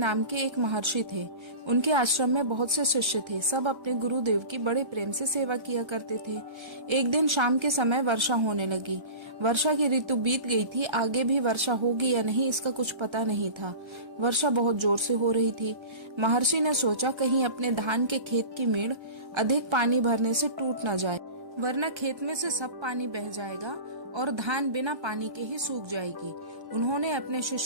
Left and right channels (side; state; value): left; late; 1.3 ms